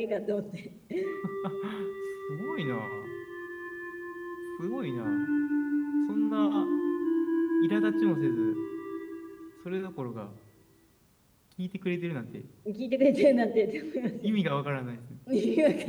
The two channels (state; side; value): identical; both; correlation 1.00